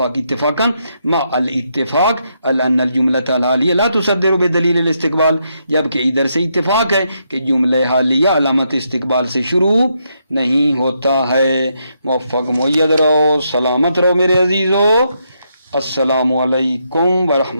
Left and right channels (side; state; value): both; inverted; correlation -0.79